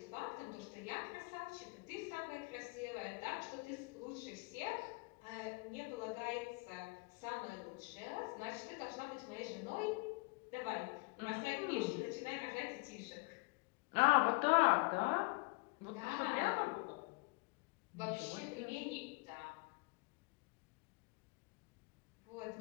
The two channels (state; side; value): quieter; right; 28.1 dB